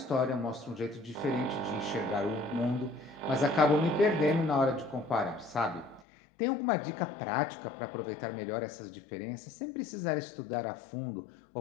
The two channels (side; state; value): right; drops out; at 6.1 s